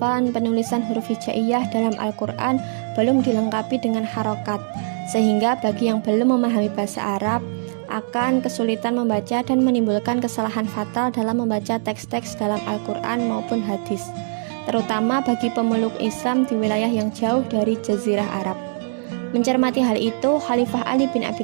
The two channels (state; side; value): silent; left; digital silence